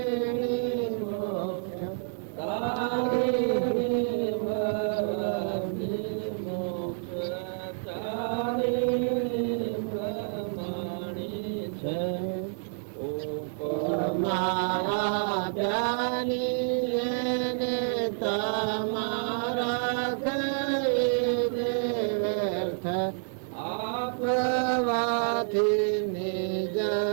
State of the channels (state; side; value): silent; left; 59 dB below the other